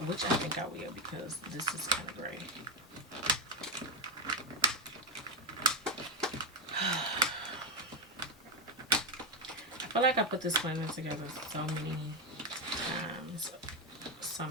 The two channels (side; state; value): both; normal; correlation 0.08